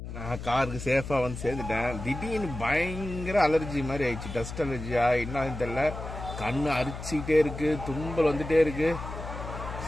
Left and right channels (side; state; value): left; noise; hum, 9 dB below the sound